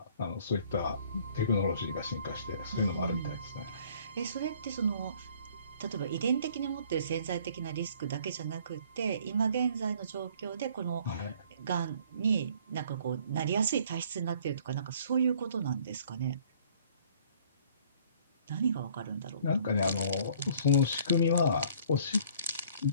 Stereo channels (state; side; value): inverted; both; correlation -0.57